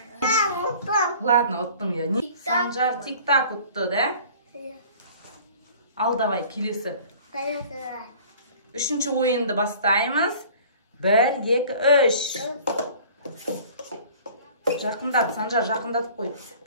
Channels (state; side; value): inverted; both; correlation -0.48